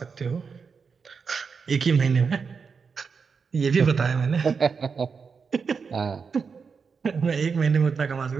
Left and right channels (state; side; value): quieter; left; 5.6 dB